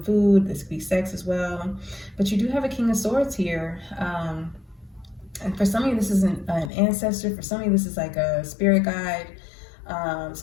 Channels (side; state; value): right; drops out; at 6.7 s